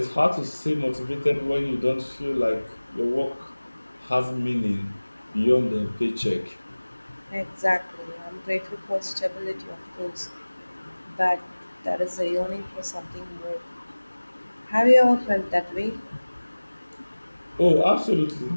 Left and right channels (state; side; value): inverted; both; correlation -1.00